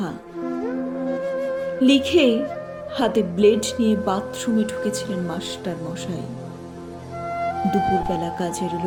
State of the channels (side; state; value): both; identical; correlation 1.00